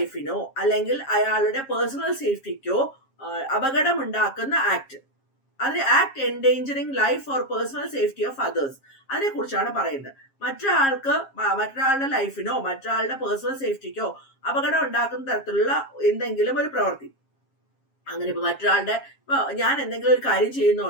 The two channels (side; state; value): right; late; 7.4 ms